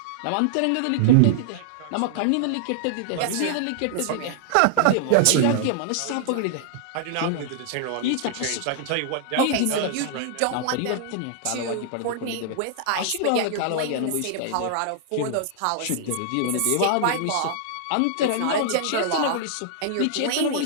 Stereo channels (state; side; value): different; both; correlation -0.01